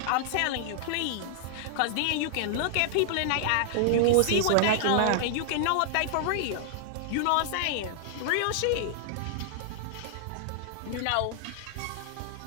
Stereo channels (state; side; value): different; both; correlation -0.01